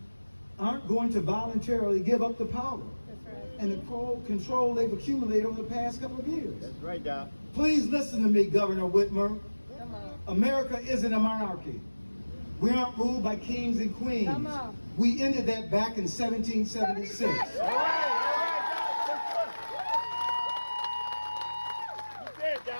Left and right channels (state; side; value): inverted; both; correlation -1.00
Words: aren't going to voluntarily give up the power That's right. and the control they've accumulated over the past couple of years. That's right, Doc. Please listen to me, Governor Whitmer. Come on. America isn't a monarchy. We aren't ruled by kings and queens. Come on. We ended that back in 1776. All right, Doc. You said it,